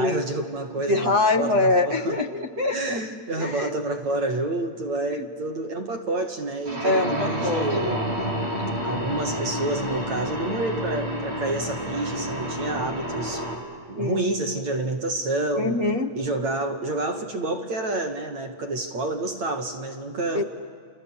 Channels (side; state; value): left; late; 8.9 ms